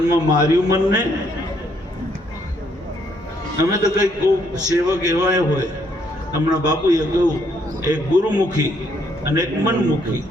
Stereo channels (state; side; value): normal; both; correlation 0.70